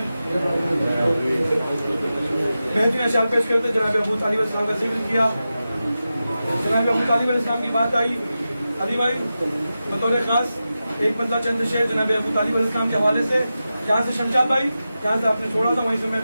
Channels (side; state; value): both; inverted; correlation -0.92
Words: बेहतरीन अशार पेश करते जनाब अबू तालिब अलैहिस्सलाम का जिक्र किया। जनाब अबू तालिब अलैहिस्सलाम की बात आई, अली भाई बतौर खास एक बंदा चंद शेर जनाब अबू तालिब अलैहिस्सलाम के हवाले से, जहाँ से शमशाद भाई जहाँ से आपने छोड़ा था वहीं से मैं